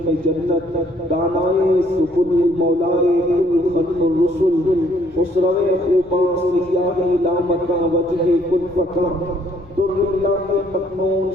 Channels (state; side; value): normal; both; correlation 0.65